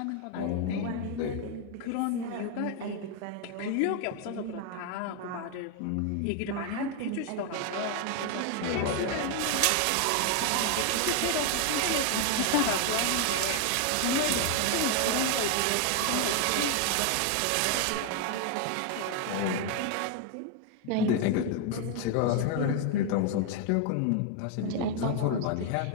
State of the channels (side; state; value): both; different; correlation 0.01